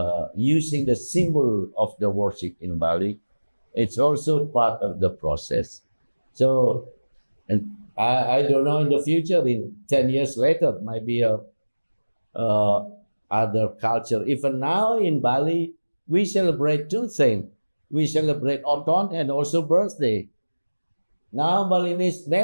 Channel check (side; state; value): both; inverted; correlation -1.00